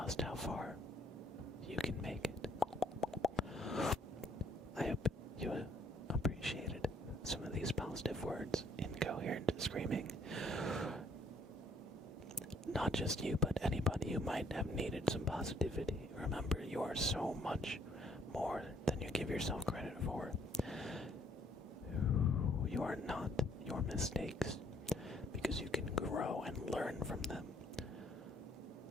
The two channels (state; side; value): normal; both; correlation 0.64